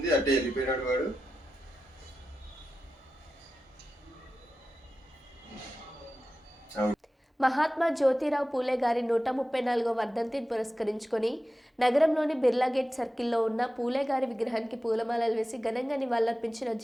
అట్టే వెళ్ళిపోయినాడు వాడు. మహాత్మా జ్యోతిరావు పూలే గారి 134వ వర్ధంతిని పురస్కరించుకొని నగరంలోని బిర్లా గేట్ సర్కిల్లో ఉన్న పూలే గారి విగ్రహానికి పూలమాలలు వేసి ఘనంగా నివాళులర్పించిన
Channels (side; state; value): both; normal; correlation 0.93